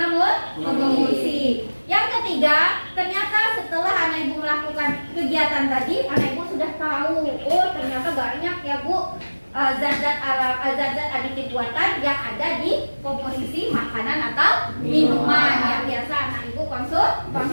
pemulsi. Yang ketiga, ternyata setelah anak ibu melakukan kegiatan tadi, anak ibu sudah tahu, oh ternyata banyak ya Bu zat-zat aditif buatan yang ada di komposisi makanan atau minuman yang biasa anak ibu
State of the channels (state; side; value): inverted; both; correlation -1.00